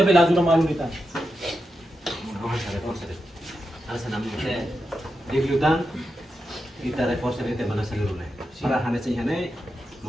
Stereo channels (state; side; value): normal; both; correlation 0.88